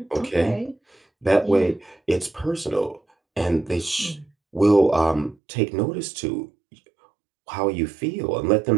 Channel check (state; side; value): drops out; left; at 5.4 s